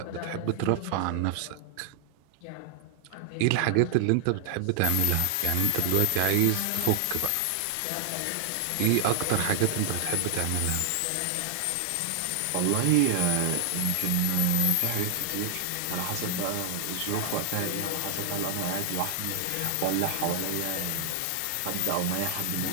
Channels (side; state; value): both; different; correlation 0.00